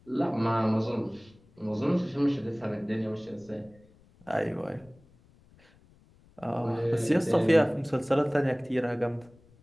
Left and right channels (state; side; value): noise; left; rumble, 29 dB below the sound